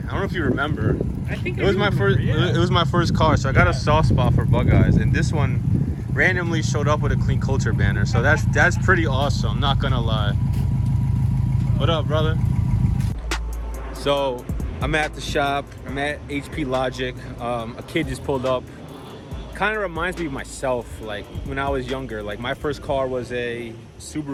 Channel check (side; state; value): both; identical; correlation 1.00